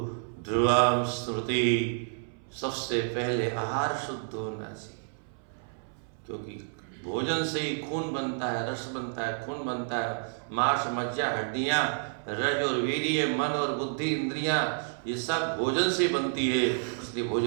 ध्रुवाम स्मृति, सबसे पहले आहार शुद्ध होना चाहिए, क्योंकि भोजन से ही खून बनता है, रस बनता है, खून बनता है, मांस, मज्जा, हड्डियां, रज और वीर्य, मन और बुद्धि, इंद्रियां, ये सब भोजन से बनती है। इसलिए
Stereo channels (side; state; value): left; silent; 58 dB below the other